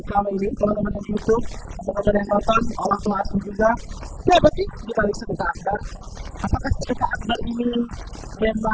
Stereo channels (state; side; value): identical; both; correlation 1.00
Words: ini, teman-teman yang di YouTube, teman-teman yang nonton, orang tua asuh juga, siapa sih di balik sedekah akbar? Apakah sedekah akbar ini